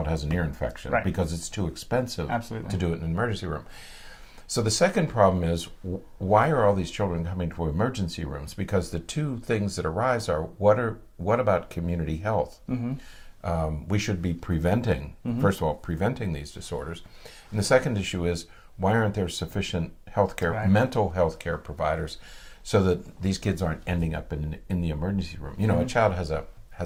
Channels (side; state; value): both; identical; correlation 1.00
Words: has an ear infection, Right. because it's too expensive Absolutely. to do it in an emergency room. So the second problem is, why are all these children coming to emergency rooms? Because the two things that arise are, what about community health? We should be preventing, first of all, preventing these disorders. And the second issue is, why aren't there sufficient healthcare, Right. mental health care providers, so that these kids aren't ending up in the emergency room? A child